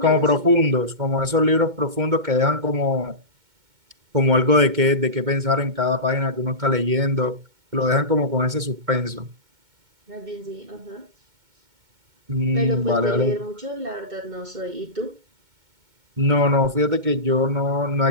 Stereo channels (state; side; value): late; left; 2.2 ms